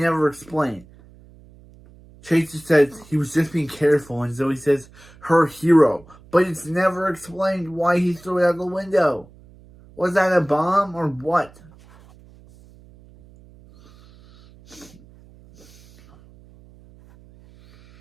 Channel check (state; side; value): noise; right; hum, 25 dB below the sound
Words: explain. Chase just says he was just being careful, and Zoe says, her hero. But it's never explained why he threw it out the window. Was that a bomb or what?